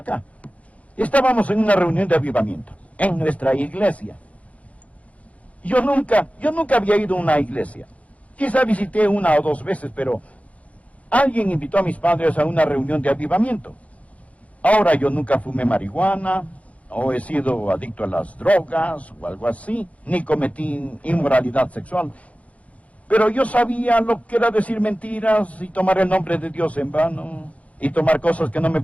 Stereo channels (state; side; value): late; right; 0.066 ms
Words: Estábamos en una reunión de avivamiento, en nuestra iglesia. Yo nunca había ido a una iglesia. Quizá visité una o dos veces, pero alguien invitó a mis padres a una reunión de avivamiento. Ahora yo nunca fumé marihuana, o he sido adicto a las drogas, o algo así, ni cometí inmoralidad sexual. Pero yo sabía lo que era decir mentiras y tomar el nombre de Dios en vano, y tomar cosas que no me